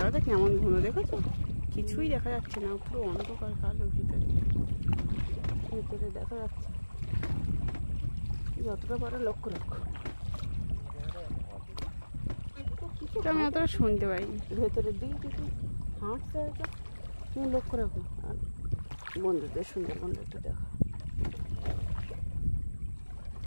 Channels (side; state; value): both; inverted; correlation -1.00